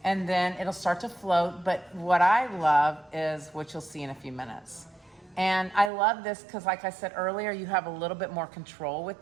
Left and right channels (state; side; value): drops out; left; at 5.9 s